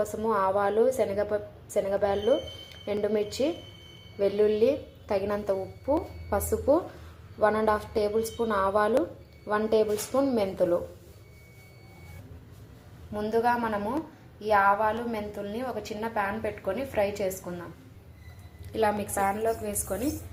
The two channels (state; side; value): identical; both; correlation 1.00